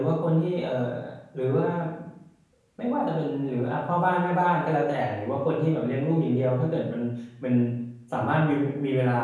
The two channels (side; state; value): both; identical; correlation 1.00